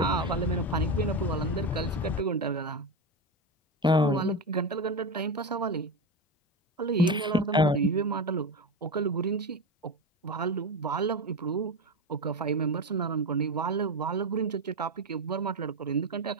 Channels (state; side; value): normal; both; correlation 0.17